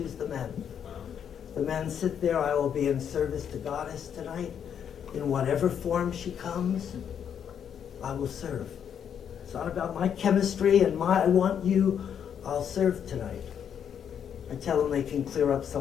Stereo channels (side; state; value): right; quieter; 8.4 dB